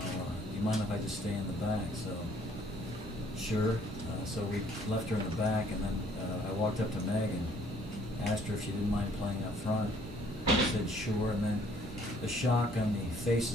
you mind if I just stay in the back? So, sure. So we left her in the back, and then I walked up to Meg and asked her if she didn't mind playing up front. She said sure, and then the shock on the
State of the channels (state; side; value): normal; both; correlation 0.61